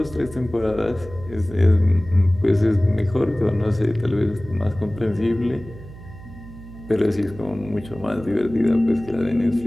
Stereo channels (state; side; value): noise; right; hum, 16 dB below the sound